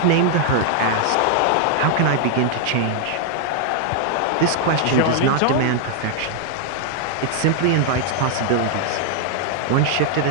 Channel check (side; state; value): both; different; correlation 0.00